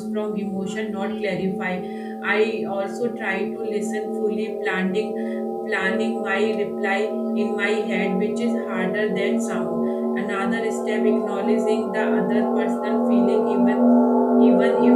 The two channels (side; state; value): both; identical; correlation 1.00